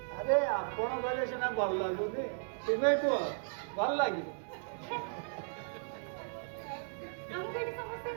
ଆରେ ଆପଣ କହିଲେ ସିନା ଭଲ ଲାଗୁନି ତୁମେ କୁହ ଭଲ ଲାଗିବ। ଆମକୁ ଏଠି ସମସ୍ତେ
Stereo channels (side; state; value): left; silent; digital silence